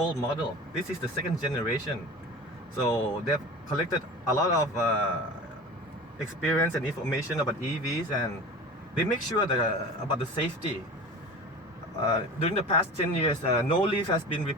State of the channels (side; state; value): both; normal; correlation 0.35